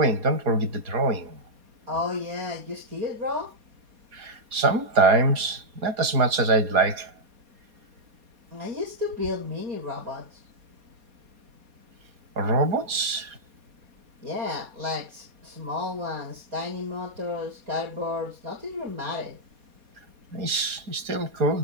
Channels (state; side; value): late; left; 4.2 ms